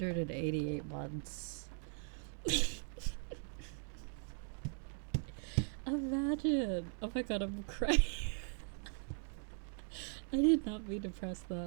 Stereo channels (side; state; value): left; silent; 51 dB below the other